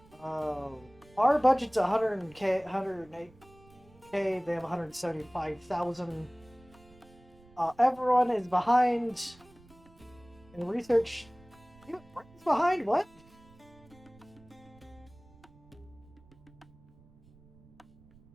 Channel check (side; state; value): right; noise; rumble, 26 dB below the sound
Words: Our budget's 108k, they have 175,000. Everyone is behind in research. Britain's behind? What?